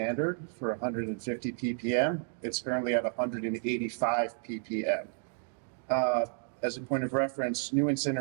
for 150 ppm. It's currently at 185 ppm. As a point of reference, new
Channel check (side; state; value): left; silent; 57 dB below the other